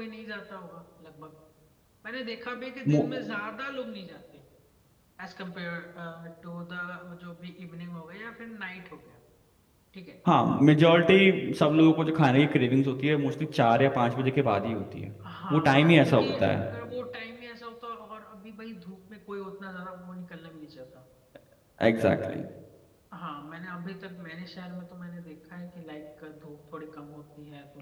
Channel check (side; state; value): both; identical; correlation 1.00